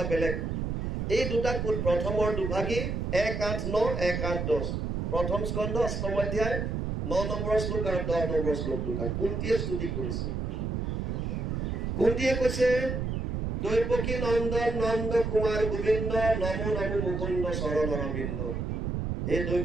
বেলেগ। এই দুটা প্ৰথমৰ দুভাগী 1:8-9 1:8-10 প্ৰথম স্কন্ধ 8ম অধ্যায় 9 নম্বৰ শ্লোক আৰু 10 নম্বৰ শ্লোক দুটা কুন্তীয়ে স্তুতি কৰিছে। কুন্তীয়ে কৈছে, দৈৱকী নন্দন নন্দ কুমাৰ গোবিন্দ নমো নমো মুকুন্দ চৰণ অৰবিন্দ। হে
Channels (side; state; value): right; noise; rumble, 2 dB below the sound